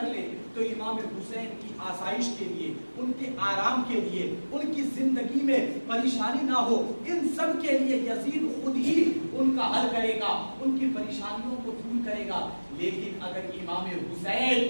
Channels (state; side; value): inverted; both; correlation -1.00